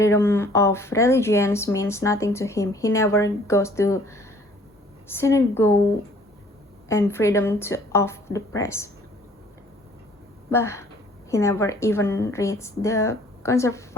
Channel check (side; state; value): both; normal; correlation 0.56